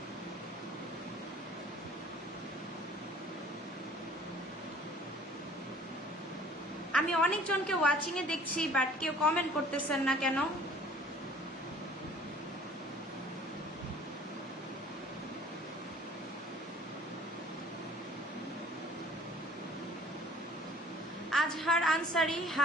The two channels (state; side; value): normal; both; correlation 0.51